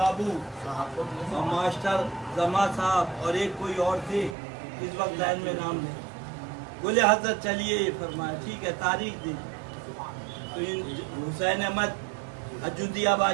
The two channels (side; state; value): left; drops out; at 4.4 s